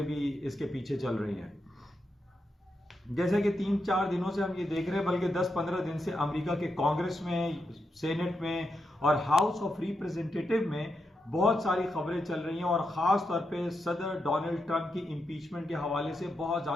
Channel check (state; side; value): normal; both; correlation 0.85